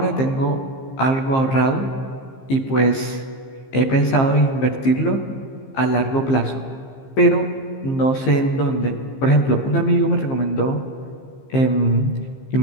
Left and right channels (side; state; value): right; late; 15 ms